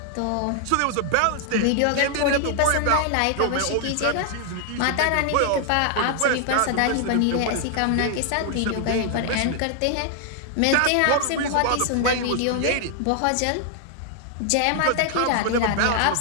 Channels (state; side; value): different; both; correlation 0.00